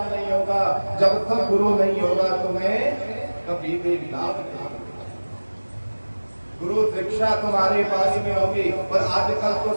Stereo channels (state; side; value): inverted; both; correlation -1.00